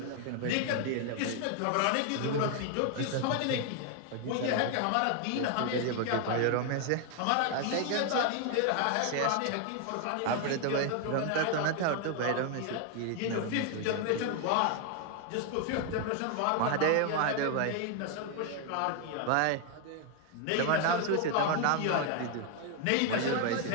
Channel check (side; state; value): both; different; correlation 0.01